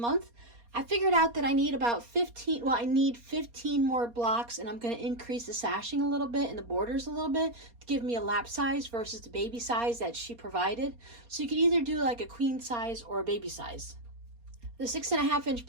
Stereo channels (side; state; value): left; late; 4.2 ms